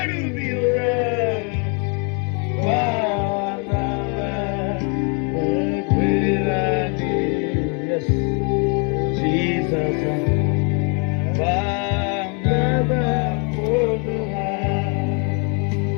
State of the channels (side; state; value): right; quieter; 36.9 dB